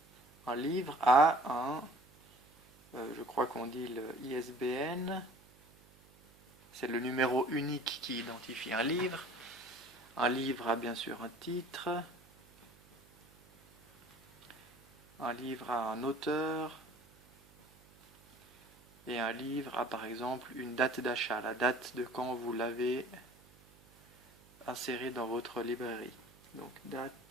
un livre a je crois qu'on dit le ISBN, c'est le numéro unique qui identifie un livre. Un livre a bien sûr un titre, un livre a un auteur, et un livre a par exemple une date d'achat, la date de quand vous l'avez inséré dans votre librairie. Donc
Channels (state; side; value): noise; right; hum, 27 dB below the sound